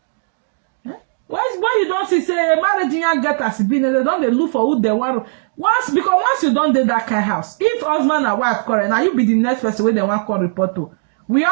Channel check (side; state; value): left; silent; digital silence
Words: When you don't see say marriage you get as been, they don't they look for who they want. Once you don't do that kind of house, if husband and wife quarrel, now you be the next person where they want call report to. We